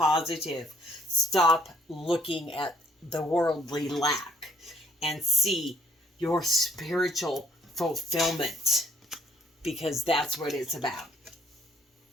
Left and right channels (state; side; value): normal; both; correlation 0.64